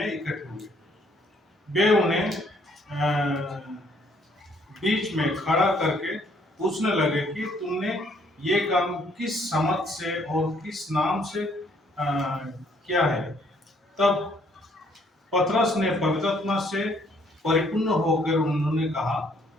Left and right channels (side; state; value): both; normal; correlation 0.65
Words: इकट्ठे हुए। वे उन्हें बीच में खड़ा करके पूछने लगे कि तुमने ये काम किस समझ से और किस नाम से किया है। तब पतरस ने पवित्र आत्मा से परिपूर्ण होकर उन्होंने कहा,